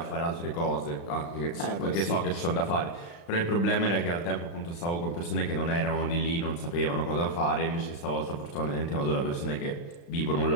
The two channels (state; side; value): late; right; 35 ms